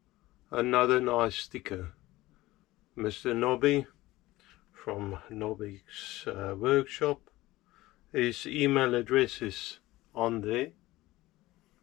Another nice sticker. Mr. Nobby from Nobby's workshop. His email address is on there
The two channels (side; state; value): right; quieter; 18.1 dB